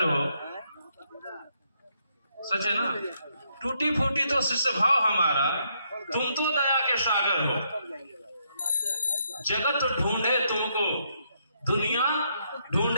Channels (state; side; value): inverted; both; correlation -0.75